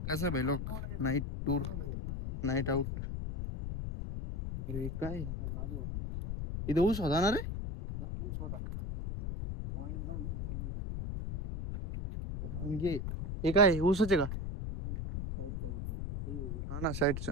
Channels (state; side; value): noise; left; rumble, 4 dB below the sound